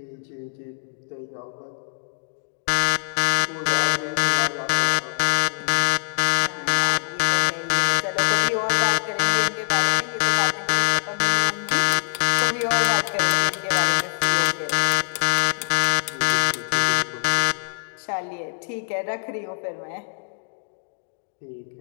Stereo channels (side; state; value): right; silent; digital silence